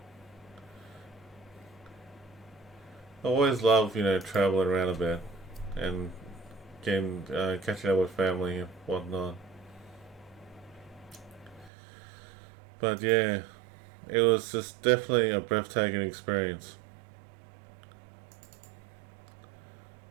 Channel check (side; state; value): left; drops out; at 11.7 s